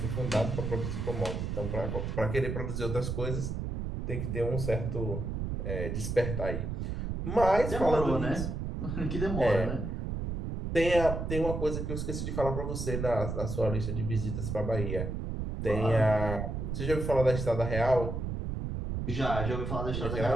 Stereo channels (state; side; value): noise; right; rumble, 3 dB below the sound